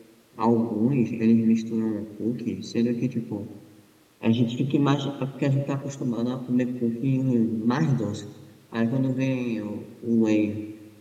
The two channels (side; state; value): both; identical; correlation 1.00